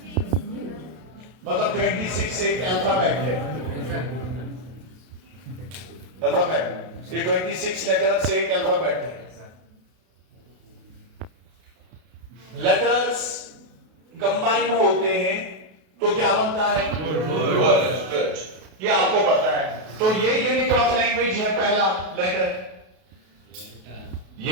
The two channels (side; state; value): left; late; 32 ms